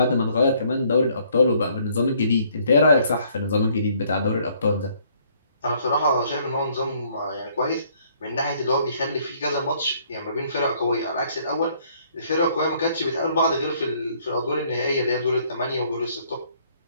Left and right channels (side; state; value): both; inverted; correlation -0.64